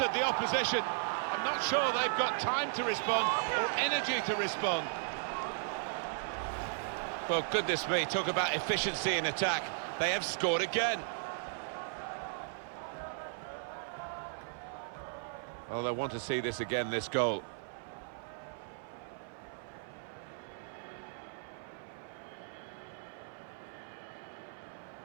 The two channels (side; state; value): left; silent; 54 dB below the other